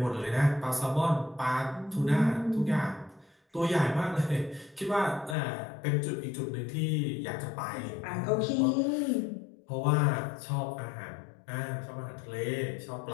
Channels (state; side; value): drops out; right; at 5.4 s